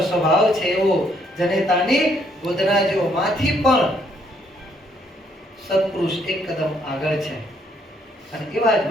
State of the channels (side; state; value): both; normal; correlation 0.69